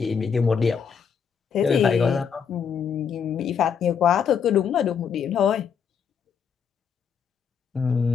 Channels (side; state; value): right; quieter; 6.9 dB